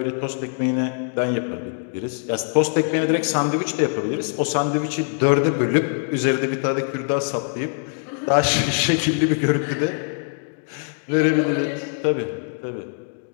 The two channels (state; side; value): silent; right; 59 dB below the other